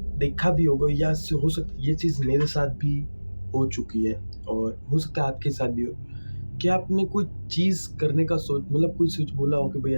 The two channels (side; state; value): both; inverted; correlation -1.00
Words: देखा भी होगा, या हो सकता है ये चीज़ मेरे साथ भी हो चुकी है, और हो सकता है आपके साथ भी हो, कि आपने कोई चीज़ करने का मतलब कोई सोच बोला हो कि भाई